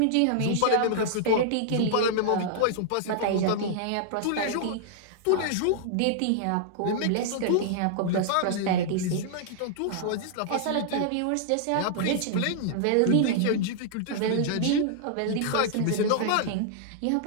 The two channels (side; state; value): both; different; correlation -0.01